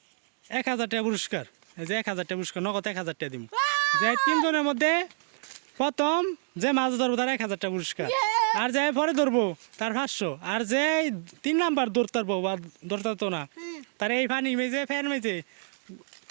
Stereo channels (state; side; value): silent; left; digital silence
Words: 1000 টাকা পুরস্কার। এই যে 1000 টাকা পুরস্কার, নগদ 1000 টাকা দিব। যে তিনজনের মধ্যে প্রথম যে মাছ ধরবো তার 1000 টাকা পুরস্কার, আর যে পরে ধরবো তার 500, আর যে 3 নাম্বার ধরতে পারবো বা ধরতে পারতো না তার এই পানি মেজে ফ্যান মেজে